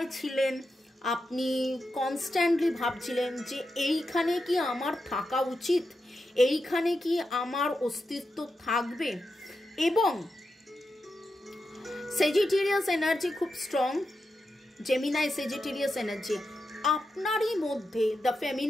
ছিলেন, আপনি কনস্ট্যান্টলি ভাবছিলেন যে এইখানে কি আমার থাকা উচিত, এইখানে কি আমার অস্তিত্ব থাকবে। এবং সেজিটেরিয়াস এনার্জি খুব স্ট্রং, জেমিনাই সেজিটেরিয়াস এনার্জি, আপনারই মধ্যে the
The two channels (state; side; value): normal; both; correlation 0.88